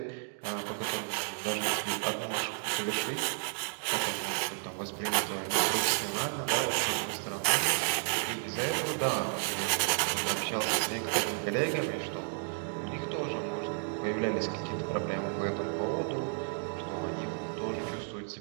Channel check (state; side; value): silent; left; 56 dB below the other